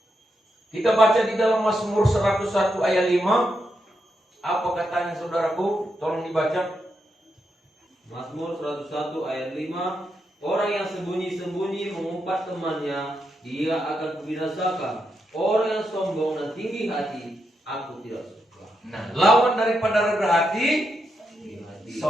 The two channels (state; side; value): normal; both; correlation 0.83